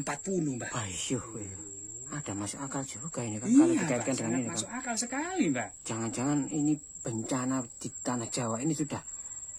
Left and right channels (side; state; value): both; identical; correlation 1.00